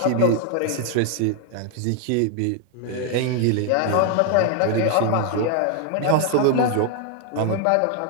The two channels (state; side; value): different; both; correlation 0.00